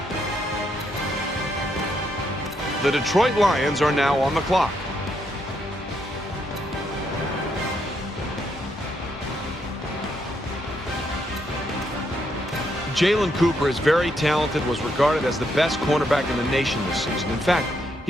The Detroit Lions are now on the clock. Jalen Cooper is very talented, was regarded as the best cornerback in the nation this season. In fact,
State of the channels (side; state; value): both; normal; correlation 0.77